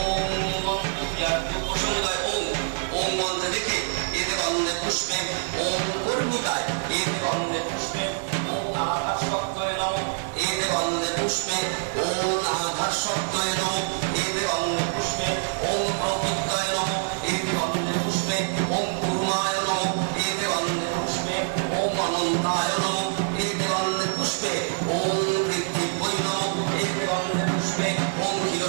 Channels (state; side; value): silent; left; 61 dB below the other